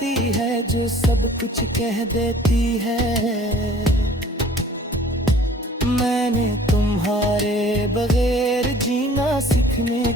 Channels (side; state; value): both; normal; correlation 0.51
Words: है जो सब कुछ कह देती है। मैंने तुम्हारे बगैर जीना सीखने